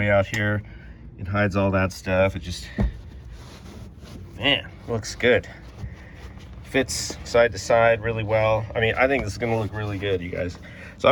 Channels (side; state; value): both; identical; correlation 1.00